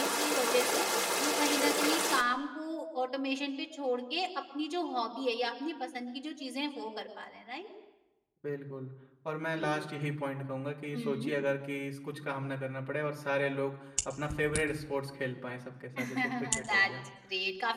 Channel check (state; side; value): identical; both; correlation 1.00